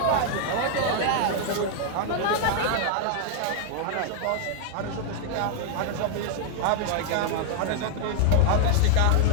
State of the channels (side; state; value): both; different; correlation 0.00